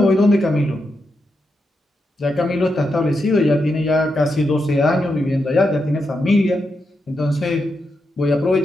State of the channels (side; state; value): both; normal; correlation 0.85